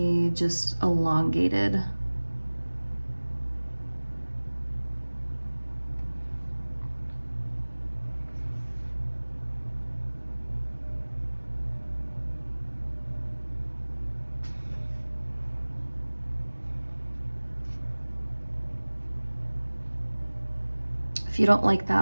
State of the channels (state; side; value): inverted; both; correlation -1.00